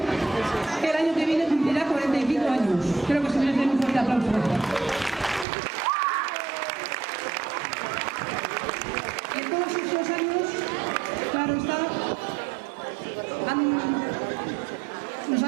que el año que viene cumplirá 45 años. Creo que se merece un fuerte aplauso. Y en todos esos años, claro está, nos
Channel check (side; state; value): left; drops out; at 5.5 s